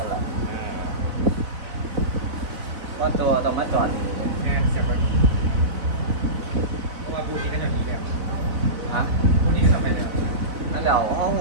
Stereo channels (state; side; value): late; left; 4.0 ms